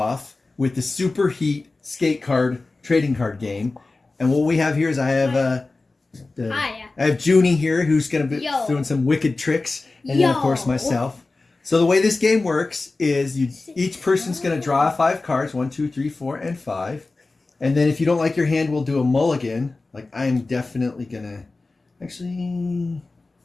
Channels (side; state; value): right; quieter; 3.4 dB